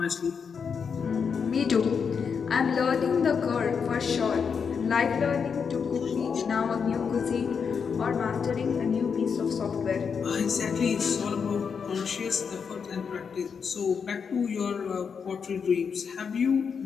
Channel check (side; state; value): right; quieter; 6.2 dB